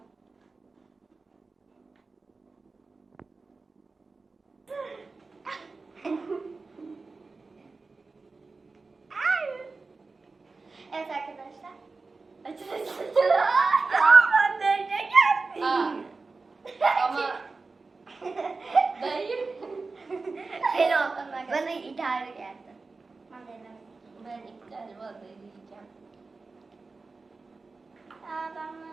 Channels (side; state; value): left; quieter; 3.9 dB